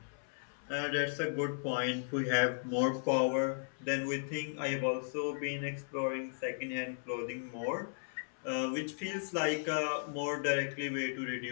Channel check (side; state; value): right; silent; 54 dB below the other